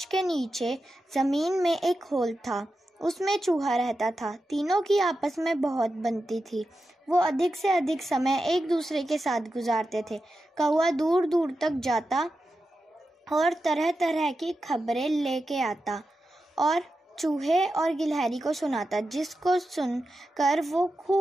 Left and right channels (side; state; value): both; normal; correlation 0.90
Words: के नीचे जमीन में एक होल था, उसमें चूहा रहता था। तीनों की आपस में बहुत बनती थी। वो अधिक से अधिक समय एक दूसरे के साथ गुजारते थे। कौवा दूर दूर तक जाता और तरह तरह की खबरें लेके आता और चूहे और गिलहरी को सुनाता, जिसको सुनकर वो